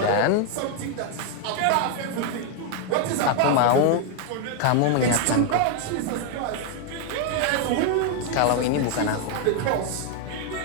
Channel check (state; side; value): different; both; correlation 0.01